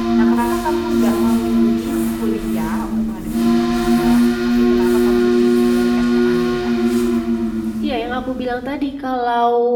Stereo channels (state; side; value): identical; both; correlation 1.00